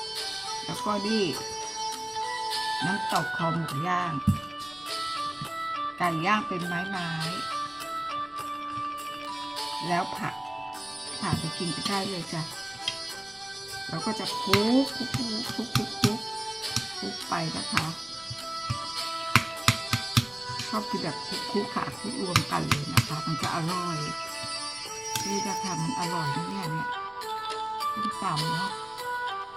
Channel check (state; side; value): noise; left; rumble, 25 dB below the sound